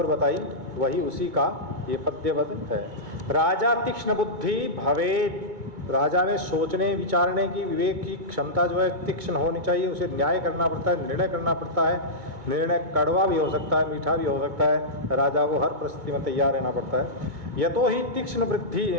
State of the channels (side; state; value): left; late; 2.2 ms